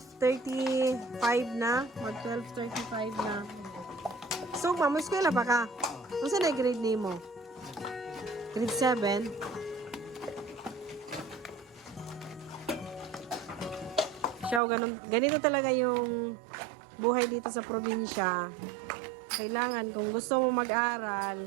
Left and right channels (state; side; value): drops out; left; at 14.6 s